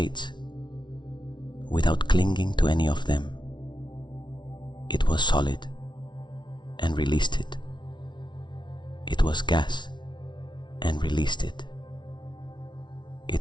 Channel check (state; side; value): late; right; 0.22 ms